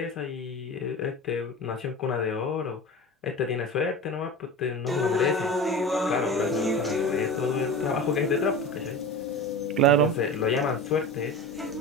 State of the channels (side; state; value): both; normal; correlation 0.31